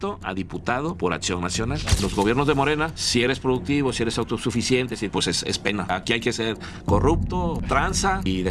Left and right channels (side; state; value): both; identical; correlation 1.00